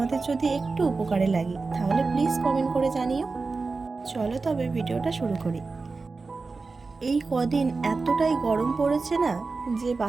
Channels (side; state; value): left; quieter; 4.0 dB